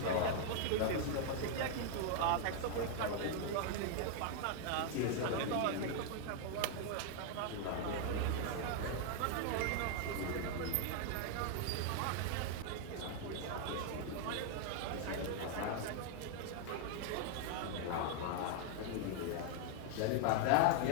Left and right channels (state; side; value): different; both; correlation 0.00